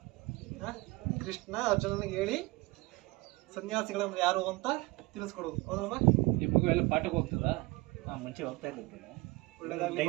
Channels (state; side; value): quieter; left; 22.6 dB